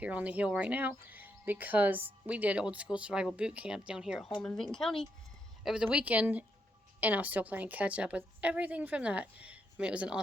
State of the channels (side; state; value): both; normal; correlation 0.79